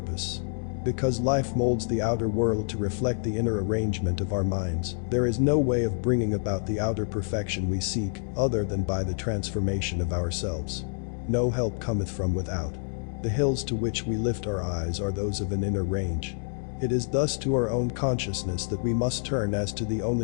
Because life molds the outer world to reflect the inner arrangement of our minds, there is no way of bringing about the outer perfection we seek, other than by the transformation of ourselves. No help cometh from without. The hills to which we lift our eyes are those of an inner range. It is thus to our own consciousness that we must turn as to the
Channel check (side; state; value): right; silent; 60 dB below the other